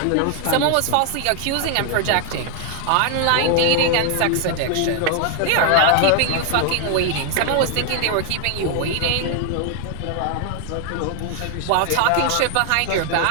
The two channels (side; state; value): both; different; correlation 0.00